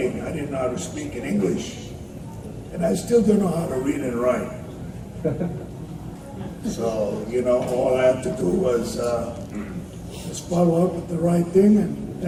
I didn't know how to speak in English. And I still don't know how to read and write. So, all I have to do was just follow up with the right thing and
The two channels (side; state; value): both; identical; correlation 1.00